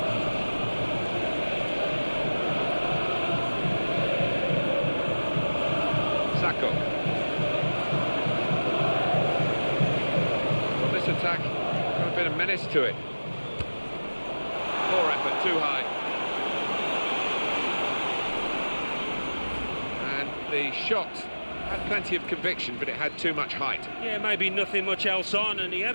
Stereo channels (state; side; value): inverted; both; correlation -1.00